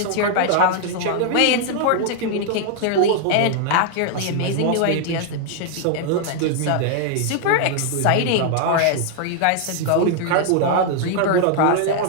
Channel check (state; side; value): different; both; correlation 0.00